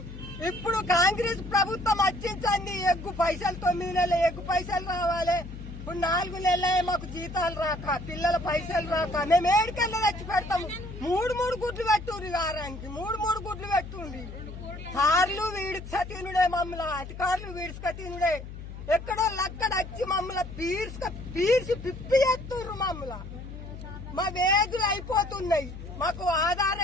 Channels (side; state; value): left; noise; hum, 11 dB below the sound